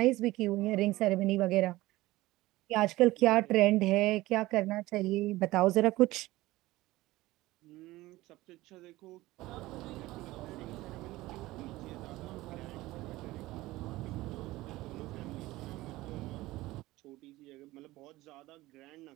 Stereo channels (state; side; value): quieter; left; 18.4 dB